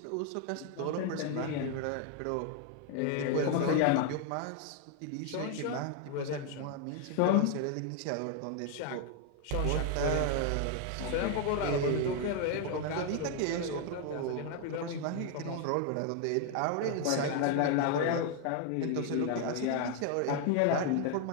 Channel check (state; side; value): different; both; correlation 0.00